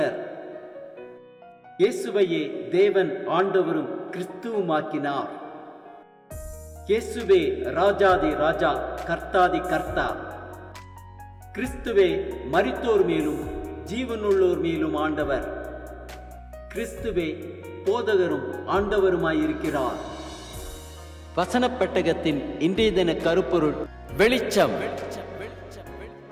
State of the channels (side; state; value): both; identical; correlation 1.00